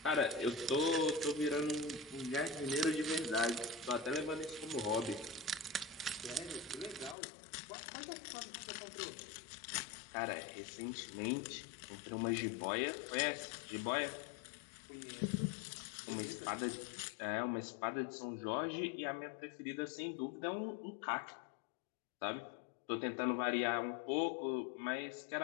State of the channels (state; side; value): drops out; right; at 7.2 s